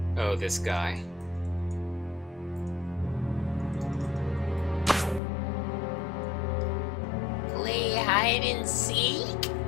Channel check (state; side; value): drops out; right; at 5.2 s